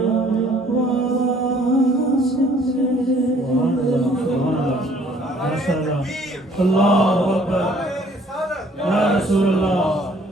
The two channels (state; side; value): normal; both; correlation 0.59